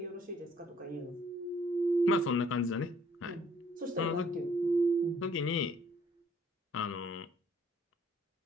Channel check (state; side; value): normal; both; correlation 0.62